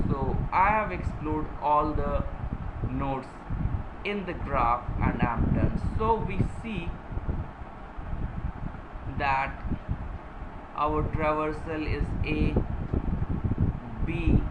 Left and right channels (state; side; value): identical; both; correlation 1.00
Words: so I have explored all the nodes in the graph and I am done. So we see that our traversal is A, B,